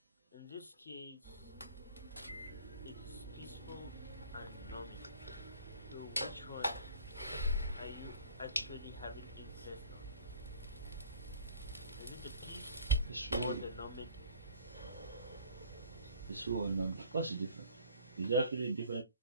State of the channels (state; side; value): inverted; both; correlation -0.51